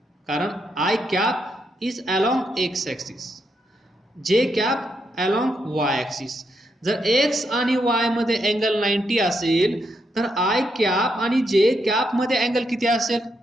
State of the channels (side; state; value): both; normal; correlation 0.80